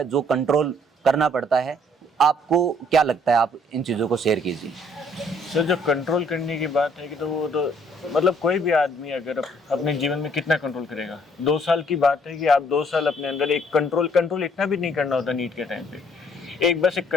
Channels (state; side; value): normal; both; correlation 0.63